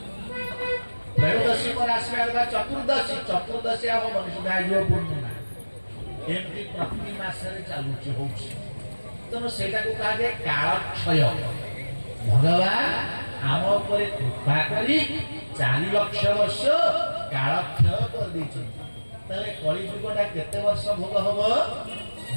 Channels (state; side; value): inverted; both; correlation -1.00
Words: त्रयोदशी पर आसबा चतुर्दशी हबनी सुधा आइयो पूर्णिमा एमती प्रति मासरे चालुची होची तनो सेटा को कहा जे काल क्षय भगवान आम उपरे कृपा करी 4 लाख वर्ष काल क्षय कर दी कलिजुगटा केते वर्ष भोग हम